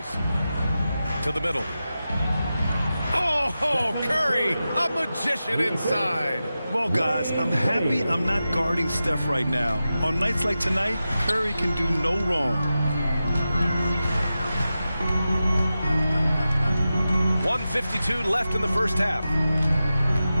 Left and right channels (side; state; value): both; inverted; correlation -0.92